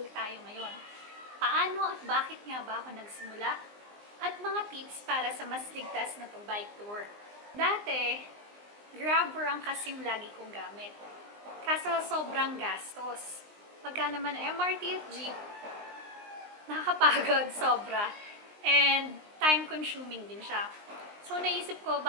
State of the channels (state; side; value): late; left; 19 ms